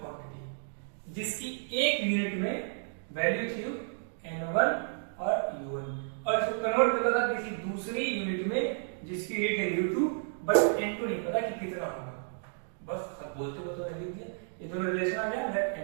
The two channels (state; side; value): silent; left; digital silence